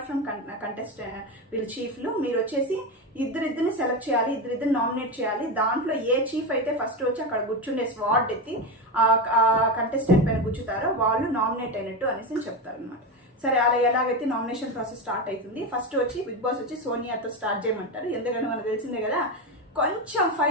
ఫ్రమ్ కంటెస్టెంట్ వీళ్ళు చీఫ్లు మీరు వచ్చేసి ఇద్దరిని సెలెక్ట్ చేయాలి, ఇద్దరిని నామినేట్ చేయాలి. దాంట్లో ఏ చీఫ్ అయితే ఫస్ట్ వచ్చి అక్కడ కూర్చుండే స్వాట్ ఎత్తి ఆ కంటెస్టెంట్ పైన కూర్చుతారో వాళ్ళు నామినేట్ అయినట్టు అనేసి చెప్తారు అనమాట. సరే అలా ఎలాగైతే నామినేషన్ ప్రాసెస్ స్టార్ట్ అవుతుంది. ఫస్ట్ వచ్చి బిగ్ బాస్ వచ్చి సోనియాతో స్టార్ట్ చేయమంటారు. ఎందుకంటే మనకు తెలిసిందే కదా, కొంచెం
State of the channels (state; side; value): normal; both; correlation 0.16